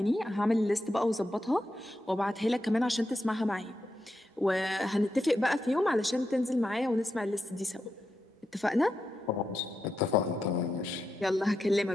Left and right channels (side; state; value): both; normal; correlation 0.86